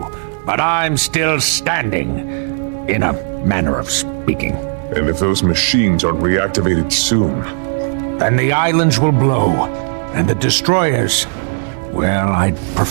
but I'm still standing, in a manner of speaking. And if those machines aren't reactivated soon? Then the islands will blow, and the destroyers... Well, I'd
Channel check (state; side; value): silent; left; digital silence